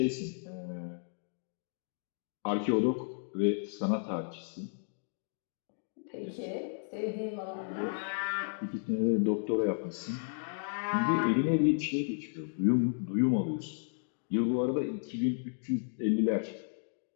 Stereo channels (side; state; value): right; silent; digital silence